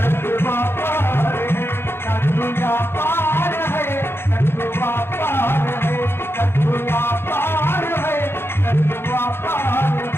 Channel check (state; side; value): late; right; 0.11 ms